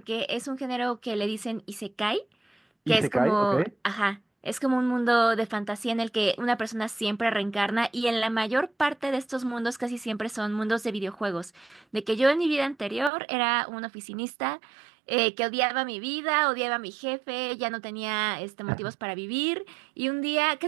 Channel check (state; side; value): drops out; left; at 13.1 s